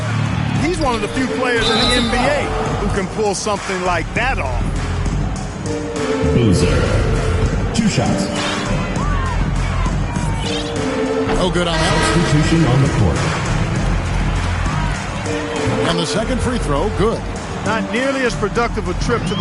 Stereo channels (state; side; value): identical; both; correlation 1.00